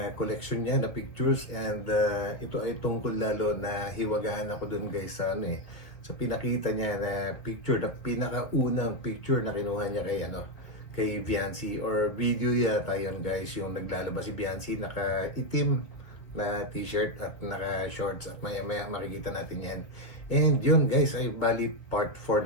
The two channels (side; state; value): right; late; 1.9 ms